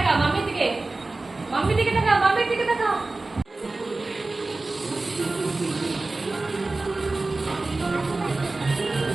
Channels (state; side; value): quieter; left; 3.3 dB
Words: মাম্মির দিকে। মাম্মির দিকে তাকা, মাম্মির দিকে তাকা।